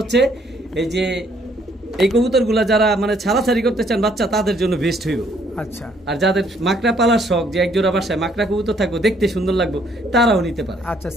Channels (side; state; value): both; normal; correlation 0.66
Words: এই যে এই কবুতরগুলা যারা মানে ছাড়াছাড়ি করতে চান বাচ্চা, তাদের জন্য বেস্ট হইব। আচ্ছা, আর যাদের মাকড়া পালার শখ, যে একজোড়া বাসায় মাকড়া কবুতর থাকবো, দেখতে সুন্দর লাগবে, তারাও নিতে পারে। আচ্ছা,